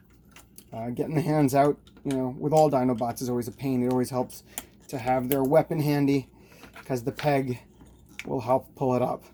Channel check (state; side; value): identical; both; correlation 1.00